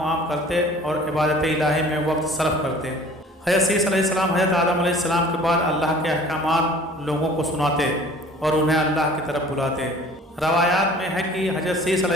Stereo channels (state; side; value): normal; both; correlation 0.49